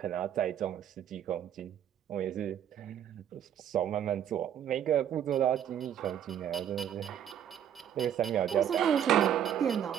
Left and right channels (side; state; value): left; quieter; 9.7 dB